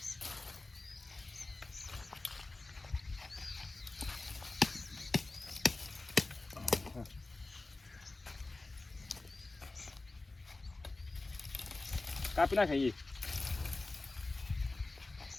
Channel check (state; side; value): quieter; right; 3.2 dB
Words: કાપી ના ખાઈએ